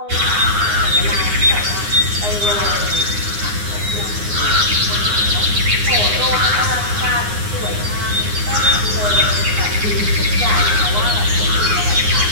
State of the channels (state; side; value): late; left; 9.7 ms